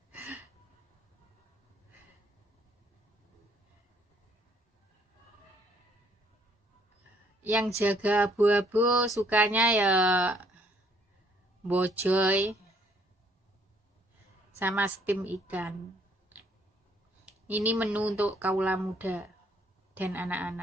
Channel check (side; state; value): both; normal; correlation 0.65